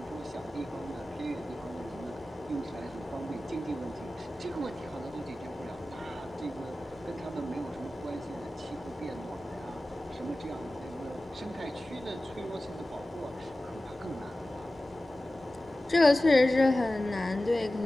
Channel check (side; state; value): both; normal; correlation 0.96